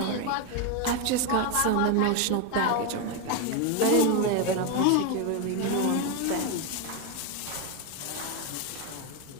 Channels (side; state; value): both; different; correlation 0.02